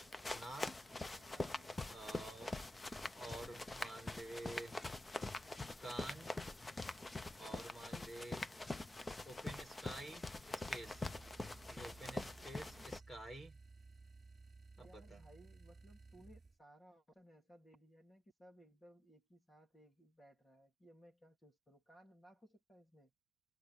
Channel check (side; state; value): both; normal; correlation 0.92